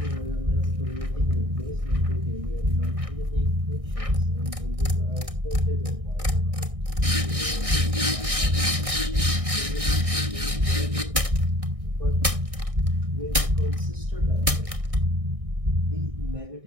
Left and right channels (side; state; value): left; late; 1.6 ms